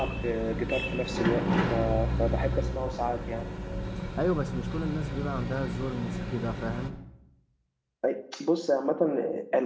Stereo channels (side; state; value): both; identical; correlation 1.00